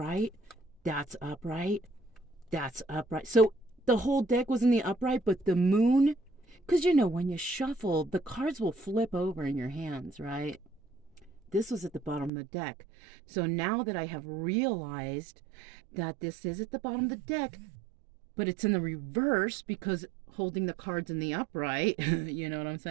That's upright. That's upright. So the whole deck was in the upright, but the moon, because you know, when you shuffle, the cards will flip over in your hands, right? This was at the bottom of the deck. So now that I have realized that this is at the bottom of the deck, but it's in the reverse because holding the cards in the upright, you know what I'm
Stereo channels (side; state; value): left; drops out; at 12.3 s